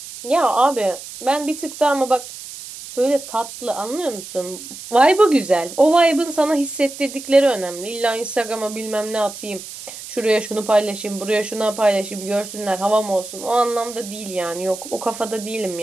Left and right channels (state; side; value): noise; right; hiss, 13 dB below the sound